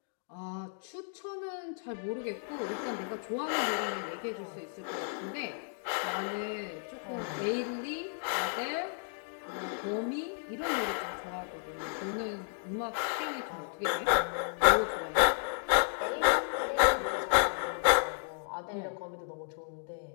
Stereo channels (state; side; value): silent; right; digital silence